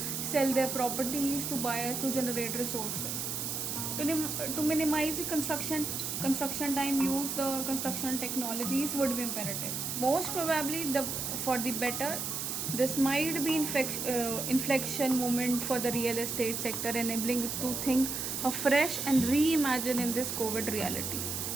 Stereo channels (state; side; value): noise; right; hiss, 3 dB below the sound